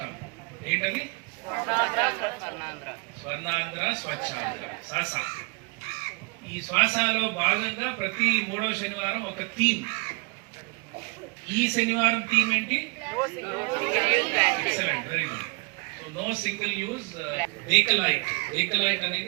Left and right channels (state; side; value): quieter; left; 32.3 dB